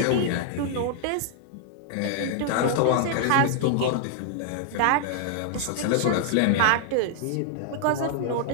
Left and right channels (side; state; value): both; different; correlation -0.01